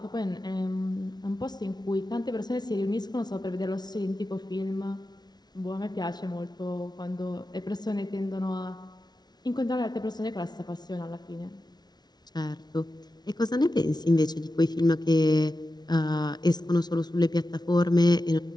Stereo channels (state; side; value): late; right; 0.19 ms